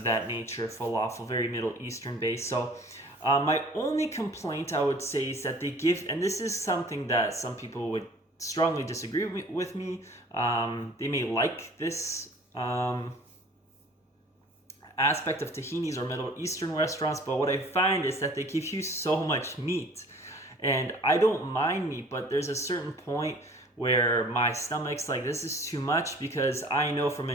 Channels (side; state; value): both; normal; correlation 0.49